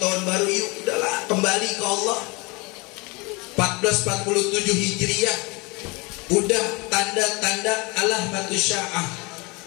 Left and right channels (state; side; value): quieter; right; 26.7 dB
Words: tahun baru, yuk udahlah kembali ke Allah. 1447 Hijriah, udah tanda-tanda alamatus sya'ah,